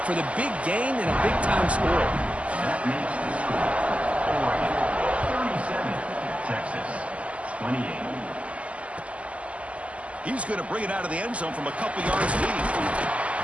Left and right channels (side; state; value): left; late; 0.063 ms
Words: for the big gain and a big-time score. That makes the score 37, Texas 28. He's going to bring it out of the end zone from a couple yards deep.